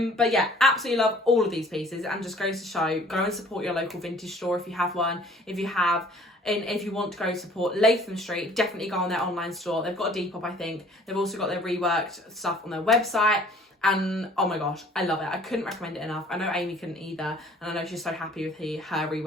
yeah, absolutely love all of these pieces, and just goes to show, go and support your local vintage store if you have one. If you have, and if you want to go support Latham Street, definitely go on their online store. They've got a Depop, I think. They've also got their reworked stuff on their website. And oh my gosh, I love it. I couldn't recommend it enough. I know Amy couldn't either, and I know she's so happy with her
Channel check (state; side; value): normal; both; correlation 0.54